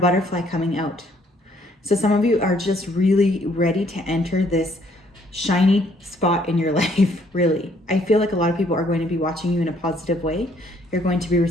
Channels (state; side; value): normal; both; correlation 0.65